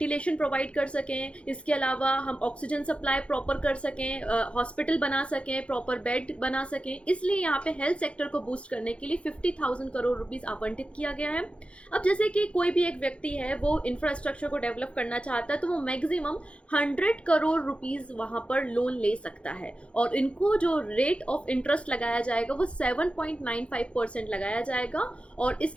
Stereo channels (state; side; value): late; right; 0.060 ms